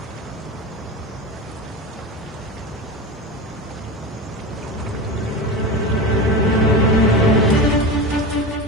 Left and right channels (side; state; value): both; normal; correlation 0.24